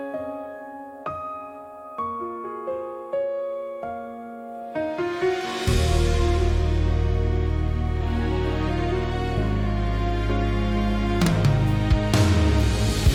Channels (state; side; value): identical; both; correlation 1.00